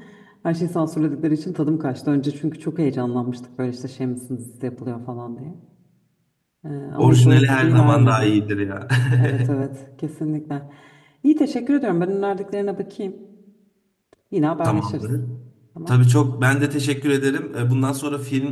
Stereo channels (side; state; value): both; identical; correlation 1.00